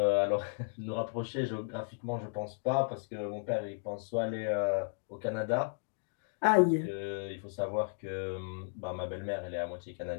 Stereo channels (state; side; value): silent; right; digital silence